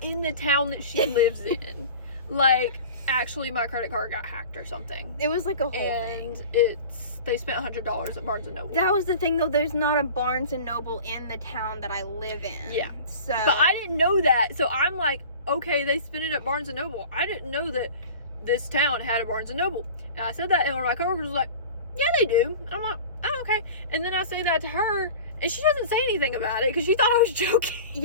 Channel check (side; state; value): both; inverted; correlation -0.39